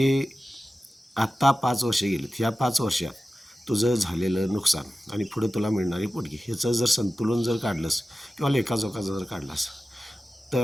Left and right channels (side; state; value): both; normal; correlation 0.94